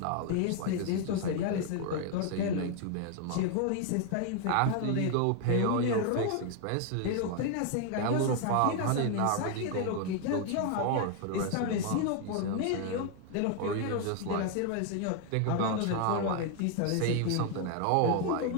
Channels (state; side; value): different; both; correlation 0.00